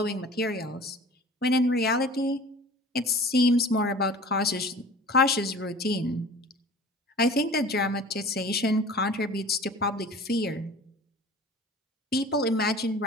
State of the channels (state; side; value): normal; both; correlation 0.43